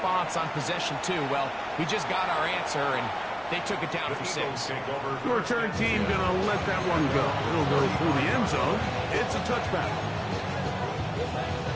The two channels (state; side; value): identical; both; correlation 1.00